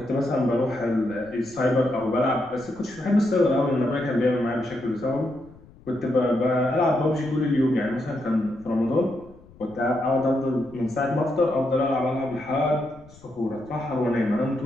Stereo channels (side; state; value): left; noise; rumble, 24 dB below the sound